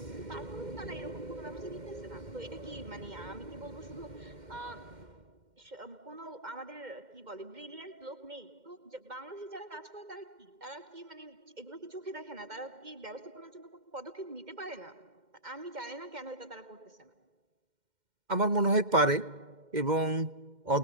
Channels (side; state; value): left; late; 2.1 ms